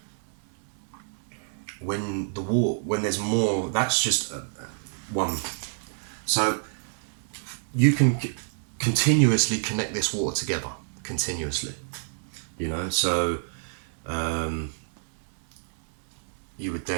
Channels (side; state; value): left; silent; 60 dB below the other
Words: when there's more, that's just one. So you can continuously connect this water together, continuously. You know, so you would